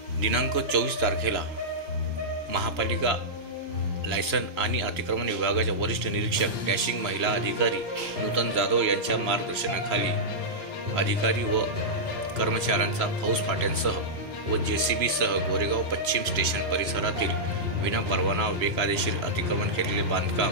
दिनांक 24 तारखेला महापालिका लायसन आणि अतिक्रमण विभागाच्या वरिष्ठ निरीक्षक डॅशिंग महिला अधिकारी नूतन जाधव यांच्या मार्गदर्शनाखाली अधिकारी व कर्मचाऱ्यांचा फौज फाट्यांसह व JCB सह गोरेगाव पश्चिम स्टेशन परिसरातील विनापरवाना बेकायदेशीर अतिक्रमण केलेले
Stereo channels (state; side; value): late; left; 3.0 ms